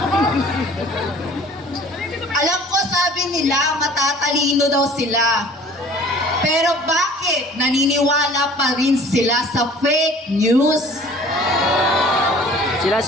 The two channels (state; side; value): normal; both; correlation 0.49